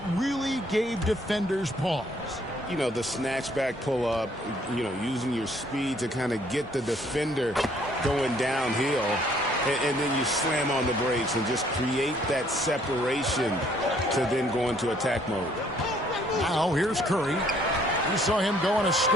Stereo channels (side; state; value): both; normal; correlation 0.63